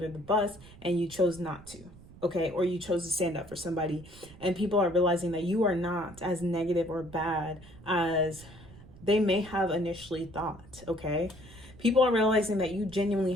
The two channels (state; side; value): noise; right; rumble, 20 dB below the sound